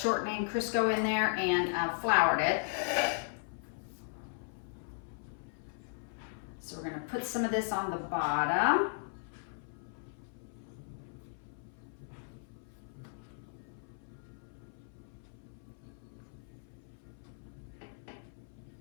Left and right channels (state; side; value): silent; right; 53 dB below the other